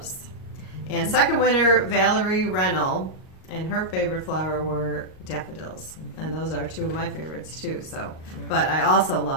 And second winner, Valerie Rennell, and her favorite flower were daffodils. And those are 2 of my favorites too. So, but I also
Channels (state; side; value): late; right; 38 ms